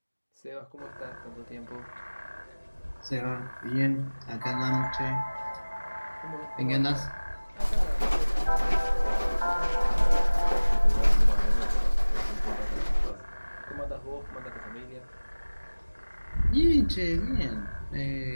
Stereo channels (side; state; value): both; inverted; correlation -1.00